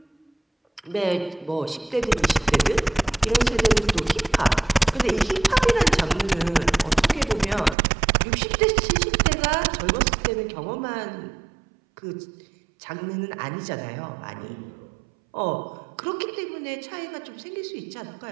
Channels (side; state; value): left; drops out; at 7.8 s